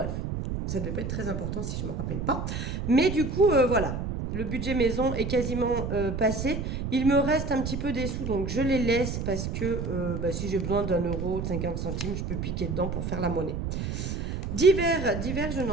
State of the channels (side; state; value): right; noise; rumble, 3 dB below the sound